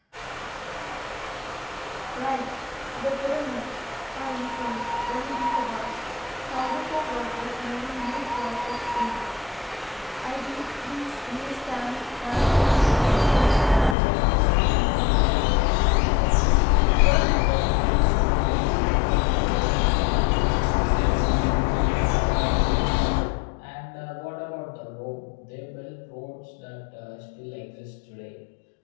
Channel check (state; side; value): drops out; right; at 14.0 s